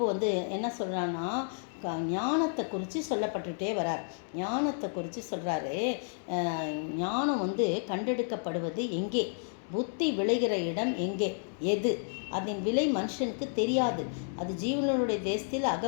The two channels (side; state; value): right; silent; digital silence